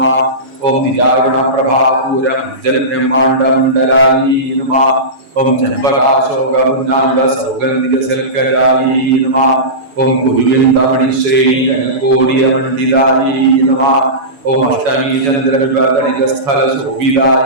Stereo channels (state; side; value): late; left; 7.1 ms